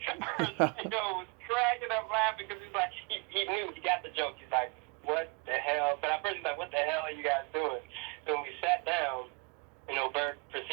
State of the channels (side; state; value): left; quieter; 31.0 dB